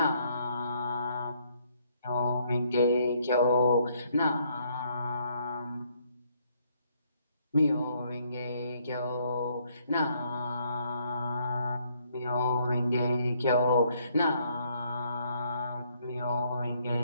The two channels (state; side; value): inverted; both; correlation -0.68